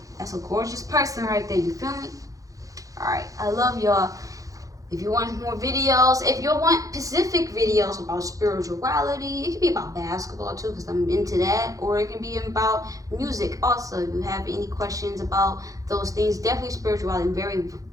That's a gorgeous person right there. You feel me? Alright. I love y'all. If you want more videos, if you want specific videos about spirituality, it can be about basketball too, because I'm into that, or it can be about music also. If you have any questions about those things, definitely spirituality. I'm very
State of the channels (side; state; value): left; late; 0.17 ms